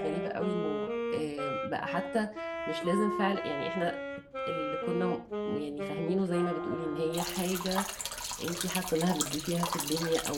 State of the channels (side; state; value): both; identical; correlation 1.00